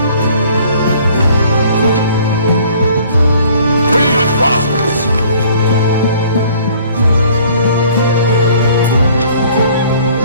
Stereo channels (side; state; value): both; inverted; correlation -0.55